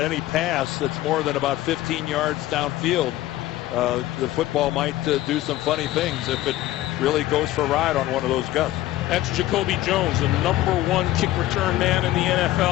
pass that's more than about 15 yards downfield. The football might do some funny things if it really goes for a ride on one of those gusts. That's Jacoby Jones, the #1 kick return man in the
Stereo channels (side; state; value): right; quieter; 15.3 dB